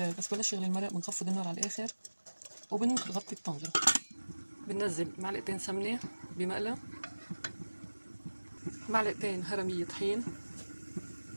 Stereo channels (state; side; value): inverted; both; correlation -1.00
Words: بلش يغلي المرق. بنخفض النار على الآخر وبنغطي الطنجرة. بننزل معلقتين سمنة بمقلى، معلقتين هرمية طحين،